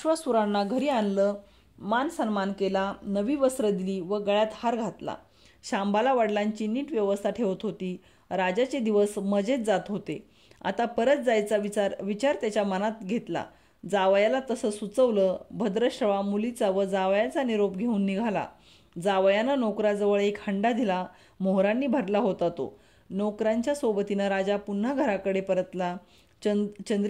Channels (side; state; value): both; identical; correlation 1.00